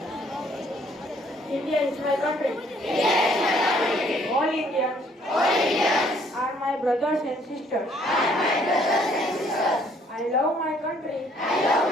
India is my country. All Indians are my brothers and sisters. I love my country.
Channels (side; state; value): both; normal; correlation 0.63